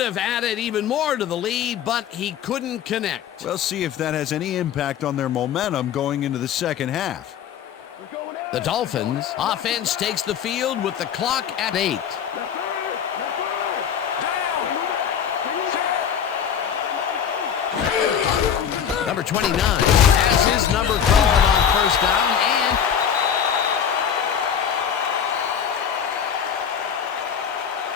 added even more to the lead, but he couldn't connect. We'll see if that has any impact on their momentum going into the second half. The Dolphins offense takes the field with the clock at 8. Number 29 has his number called on first down, and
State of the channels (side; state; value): right; quieter; 8.3 dB